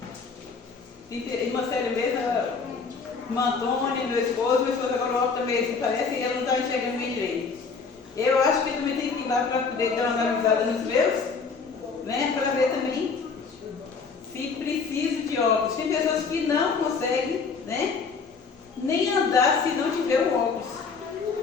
Irmã Célia mesmo, irmã Antônia, meu esposo agora o óculos também assim, parece, e ela não está enxergando bem direito. Eu acho que eu também tenho que ir lá para poder dar uma analisada nos meus, né? Para ver também se preciso de óculos. Tem pessoas que não conseguem, né? Nem andar se não tiver o óculos.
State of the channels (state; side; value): quieter; right; 5.0 dB